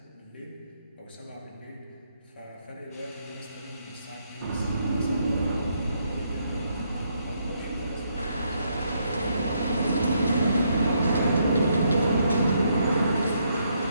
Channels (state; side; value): inverted; both; correlation -0.75